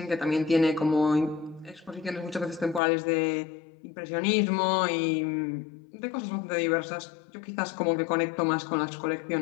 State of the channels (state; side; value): drops out; right; at 2.8 s